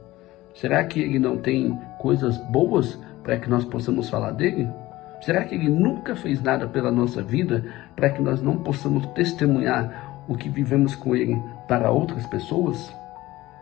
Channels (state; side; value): quieter; right; 17.7 dB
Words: Será que ele não tem coisas boas para que nós possamos falar dele? Será que ele nunca fez nada pela nossa vida para que nós não possamos testemunhar o que vivemos com ele para outras pessoas?